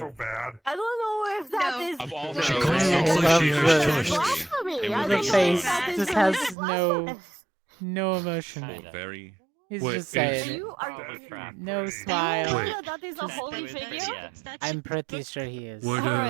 bad? I don't know if that is. Of all She the kind of looks like she has choices. blasphemy. I The don't know face if that is just really has blasphemous. no emotion. Very. He's Wait, just saying Are it. you are No you smile. know Wait. that is a holy figure? I'm pretty sure he is. What,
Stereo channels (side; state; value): left; drops out; at 6.6 s